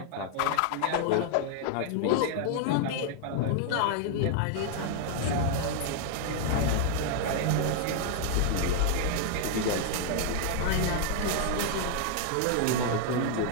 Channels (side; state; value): both; different; correlation 0.00